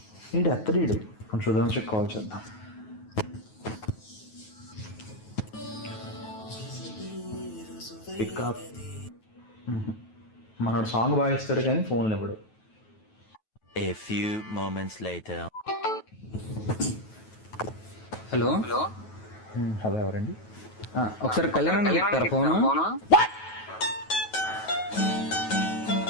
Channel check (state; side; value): late; right; 9.3 ms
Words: ఎత్తడీడు కొంచెం సుధాంశకి కాల్ చేద్దాం. పికప్ మనోడు సాంగ్ బాగా ఇస్తాడు కానీ ఫోన్లు ఇవ్వడు. A few moments later. Hello hello ఎవరండి? ఒకసారి కళ్యాణ్ చెప్తారా ఫోను?